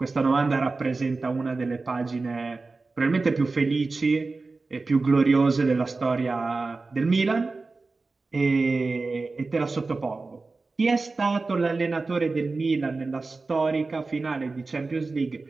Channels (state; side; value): quieter; left; 3.8 dB